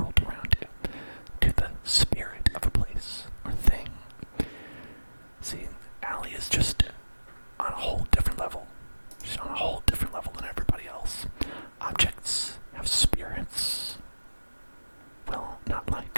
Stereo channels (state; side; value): inverted; both; correlation -1.00